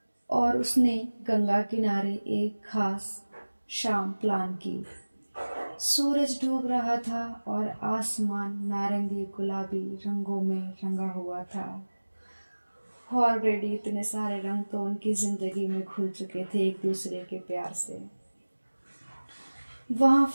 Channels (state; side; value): inverted; both; correlation -1.00